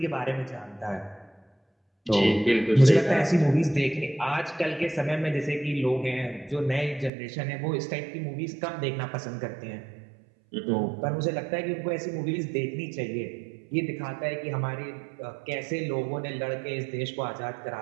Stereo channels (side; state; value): left; drops out; at 7.1 s